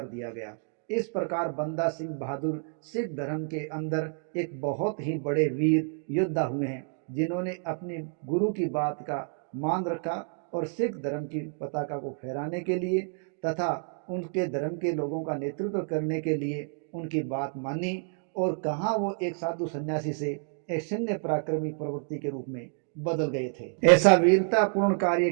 दिया गया। इस प्रकार बंदा सिंह बहादुर सिख धर्म के अंदर एक बहुत ही बड़े वीर योद्धा हुए हैं, जिन्होंने अपने गुरु की बात का मान रखा और सिख धर्म की पताका को फहराने के लिए तथा उनके धर्म के लोगों का नेतृत्व करने के लिए उनकी बात मानी और कहाँ वो एक साधु सन्यासी से एक सैन्य पराक्रमी प्रवृत्ति के रूप में बदल गए थे। ऐसा वीरतापूर्ण कार्य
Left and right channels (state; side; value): silent; left; 58 dB below the other